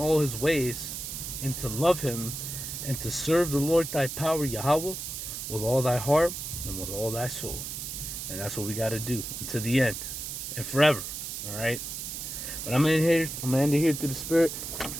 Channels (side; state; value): right; noise; hiss, 6 dB below the sound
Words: His ways, and to love Him, and to serve the Lord thy power, Yahweh, with all thy heart and with all thy soul. And that's what we got to do until the end and forever. All right. But I'm gonna end it here through the Spirit.